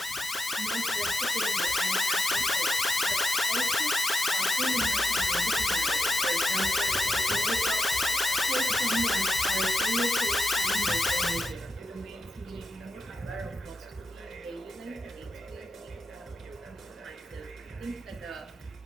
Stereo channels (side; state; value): both; normal; correlation 0.86